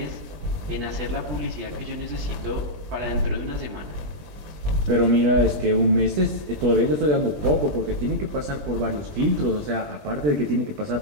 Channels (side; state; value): left; late; 20 ms